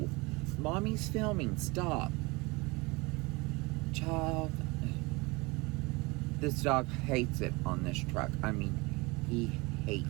Mommy's filming. Stop. Child. This dog hates it on this truck. I mean, he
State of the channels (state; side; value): quieter; left; 25.3 dB